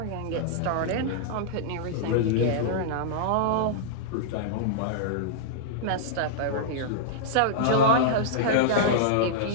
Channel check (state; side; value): different; both; correlation -0.02